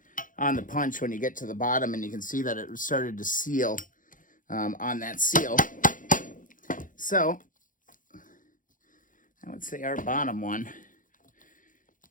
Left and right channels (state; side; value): late; right; 0.39 ms